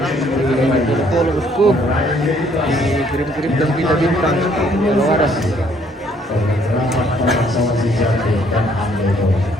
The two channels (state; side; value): normal; both; correlation 0.64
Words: follow bosku, dikirim-kirimkan kita bintang kalau ada.